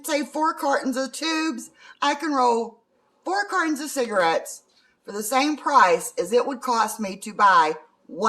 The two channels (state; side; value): identical; both; correlation 1.00